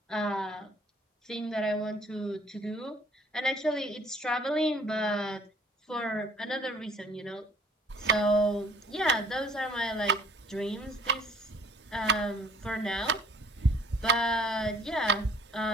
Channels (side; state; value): both; normal; correlation 0.56